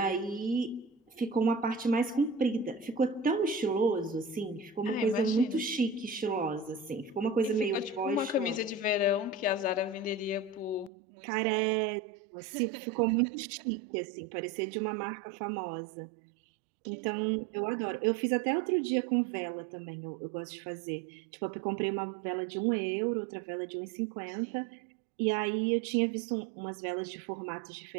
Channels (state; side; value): drops out; left; at 10.9 s